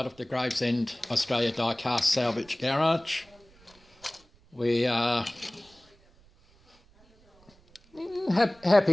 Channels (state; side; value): noise; right; rumble, 29 dB below the sound